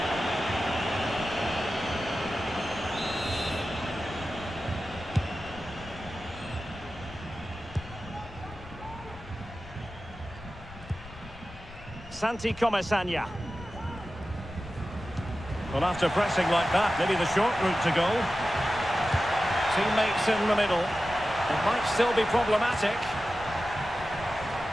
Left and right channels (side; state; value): left; noise; rumble, 17 dB below the sound